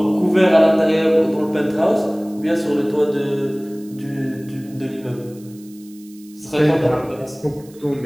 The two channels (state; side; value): noise; right; hiss, 26 dB below the sound